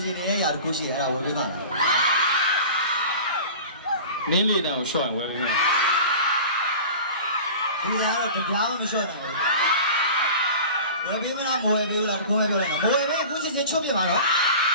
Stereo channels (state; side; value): inverted; both; correlation -0.37